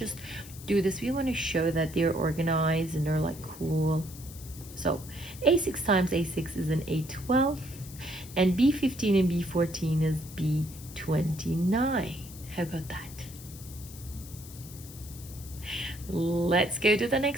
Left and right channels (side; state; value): left; noise; hiss, 16 dB below the sound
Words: do this. We want to show that they're organized and they're like cool. So A6 times A6 is an A12, and B15 and B14 is B29. How about that? Let's go to the